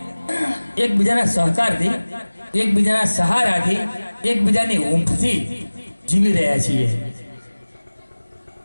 એકબીજાના સહકારથી એકબીજાના સહારાથી એકબીજાની ઊંઘથી જીવી રહ્યા છીએ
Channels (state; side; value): inverted; both; correlation -1.00